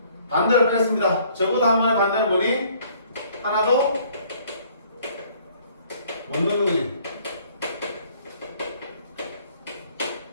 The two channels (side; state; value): both; inverted; correlation -0.59